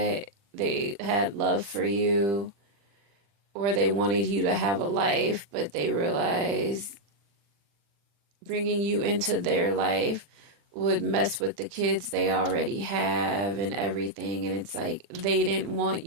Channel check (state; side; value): late; left; 40 ms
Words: had love for you, or they wanted you to have a life, but they realized bringing you into their life would mess with the kids they already have and everything. And it's like they didn't want